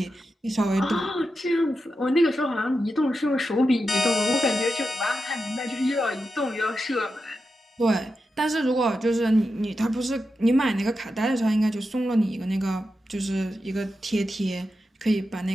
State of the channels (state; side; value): normal; both; correlation 0.89